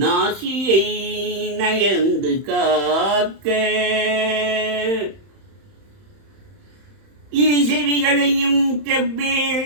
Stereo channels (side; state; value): left; late; 31 ms